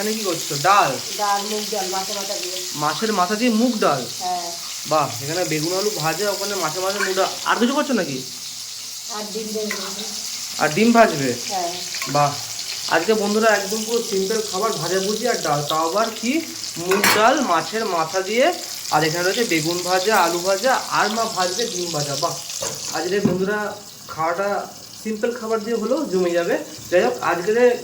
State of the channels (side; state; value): both; identical; correlation 1.00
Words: কি করছো? ডাল। ডাল, মুগ ডাল, মাথা মাথা দিয়ে। মাছের মাথা দিয়ে মুগ ডাল। হ্যাঁ। বাহ, এখানে বেগুন আলু ভাজা, ওখানে মাছের মাথা মুগ ডাল। আর কিছু করছো নাকি? আর ডিম দেবো। আর ডিম ভাজবে? হ্যাঁ। বাহ, আজকে বন্ধুরা একদম পুরো সিম্পল খাবার, ভাজা ভুজি আর ডাল, তাও আবার কি মুগ ডাল মাছের মাথা দিয়ে। আর এখানে রয়েছে বেগুন ভাজা, আলু ভাজা, আর মা ভাজবে ডিম ভাজা। বাহ, আজকে বন্ধুরা খাওয়াটা সিম্পল খাবার দিয়ে হলেও জমে যাবে। যাই হোক, আজকে